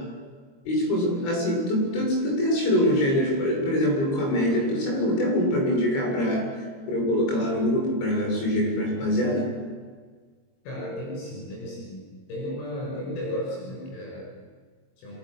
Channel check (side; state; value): right; late; 22 ms